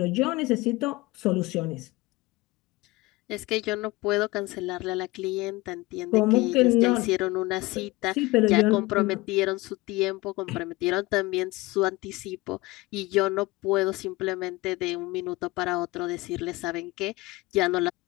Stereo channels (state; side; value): quieter; right; 21.5 dB